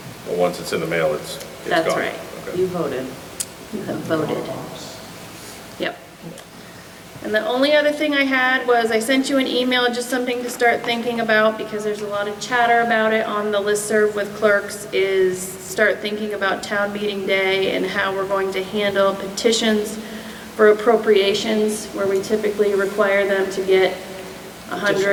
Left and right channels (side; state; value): both; identical; correlation 1.00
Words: Well, once it's in the mail, it's gone. That's right. Okay. You voted. You have voted. Yep. And the only other thing I had was I sent you an email, just something to start thinking about, because there's a lot of chatter about it on the listserv with clerks, is start thinking about town meeting day and how we're going to handle petitions for appropriations, where we typically require them to get